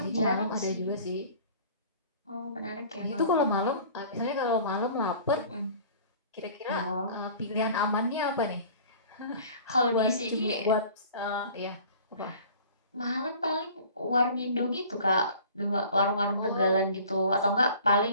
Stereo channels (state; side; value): inverted; both; correlation -0.47